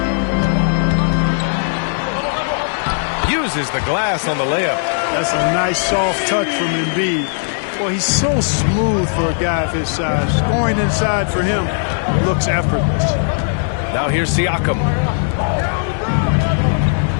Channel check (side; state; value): right; silent; digital silence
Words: Uses the glass on the layup. That's a nice soft touch from Embiid. Well, he's so smooth for a guy of his size. Scoring inside for him looks effortless. Now here's Siakam.